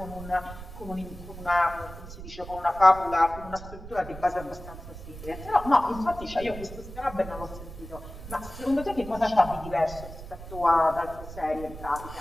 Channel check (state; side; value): noise; right; rumble, 13 dB below the sound